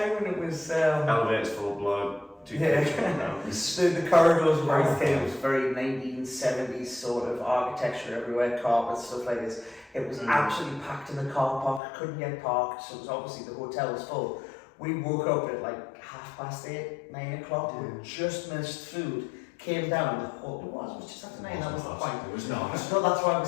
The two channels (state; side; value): drops out; right; at 11.8 s